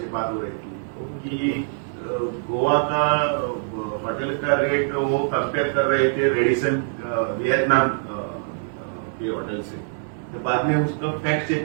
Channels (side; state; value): left; silent; 63 dB below the other